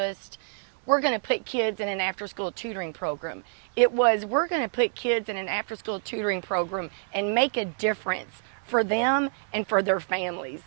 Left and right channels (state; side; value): silent; left; digital silence